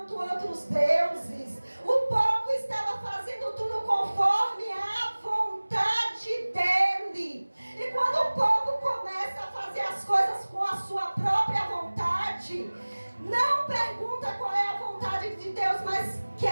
outros deuses, o povo estava fazendo tudo conforme a vontade dele. E quando o povo começa a fazer as coisas com a sua própria vontade, não pergunta qual é a vontade de Deus, mas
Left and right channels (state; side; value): inverted; both; correlation -1.00